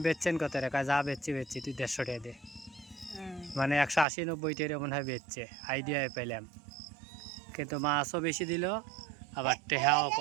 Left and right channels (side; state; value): left; drops out; at 4.0 s